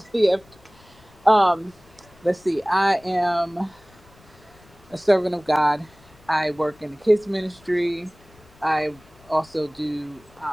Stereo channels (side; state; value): left; noise; rumble, 27 dB below the sound